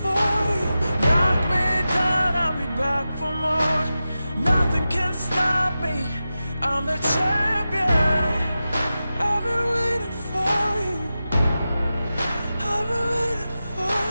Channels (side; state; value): both; inverted; correlation -0.93